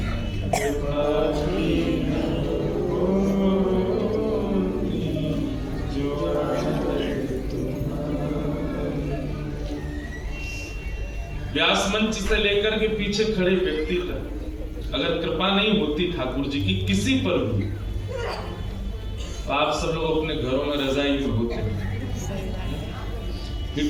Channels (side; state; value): both; identical; correlation 1.00